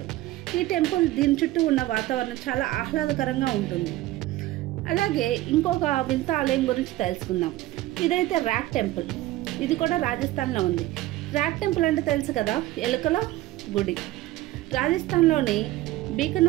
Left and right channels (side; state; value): left; quieter; 16.4 dB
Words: ఈ టెంపుల్ దీని చుట్టూ ఉన్న వాతావరణం చాలా ఆహ్లాదకరంగా ఉంటుంది. అలాగే ఇంకొక వింత ఆలయం గురించి తెలుసుకుందాం. ఇదైతే ర్యాట్ టెంపుల్. ఇది కూడా రాజస్థాన్లో ఉంది. ర్యాట్ టెంపుల్ అంటే తెలుసు కదా, ఎలుకల గుడి. రాజస్థాన్లోని